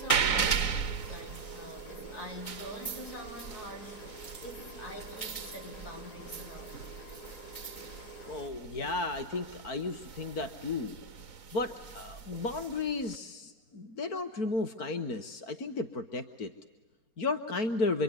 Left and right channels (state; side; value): late; right; 4.0 ms